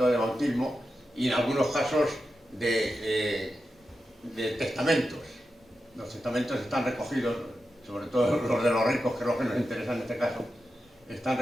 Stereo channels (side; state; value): both; normal; correlation 0.90